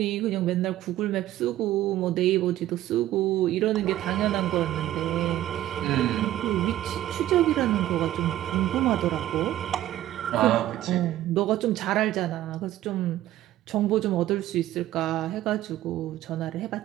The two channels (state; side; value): quieter; left; 13.8 dB